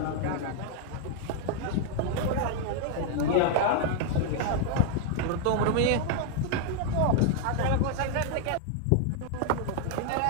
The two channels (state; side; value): different; both; correlation 0.00